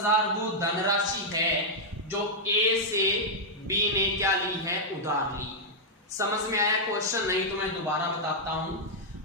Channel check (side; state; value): both; normal; correlation -0.05